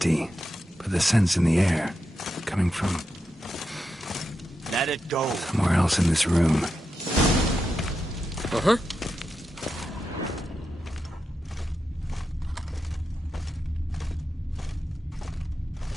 but the scent's in the air. Coming from Let it go. somewhere else in this room. Uh-huh.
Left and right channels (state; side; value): normal; both; correlation 0.88